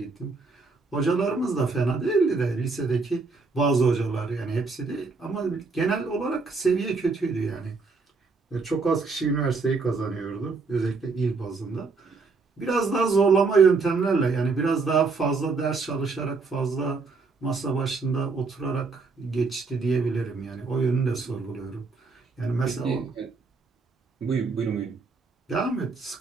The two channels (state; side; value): quieter; left; 4.2 dB